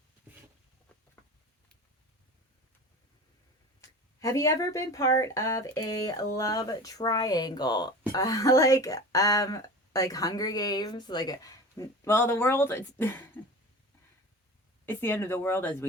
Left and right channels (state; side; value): normal; both; correlation 0.34